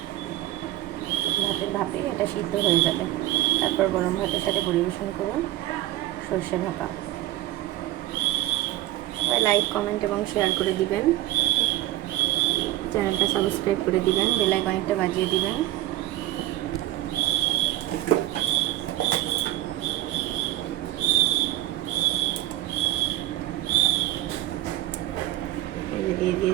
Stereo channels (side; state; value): left; quieter; 15.0 dB